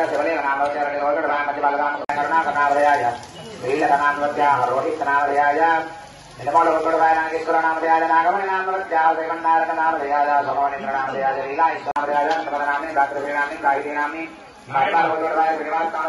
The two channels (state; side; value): identical; both; correlation 1.00